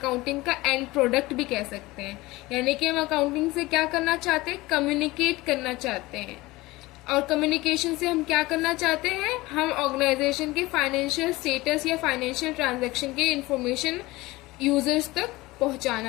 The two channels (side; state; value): right; quieter; 20.2 dB